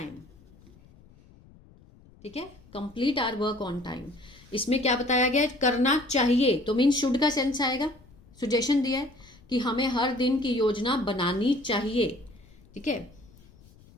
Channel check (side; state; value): left; noise; rumble, 26 dB below the sound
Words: ठीक है, complete our work on time. इसमें क्या बताया गया है, करना चाहिए, तो मीन शुड का सेंस आएगा, सुजेशन दिया है कि हमें हर दिन की योजना बनानी चाहिए, ठीक है।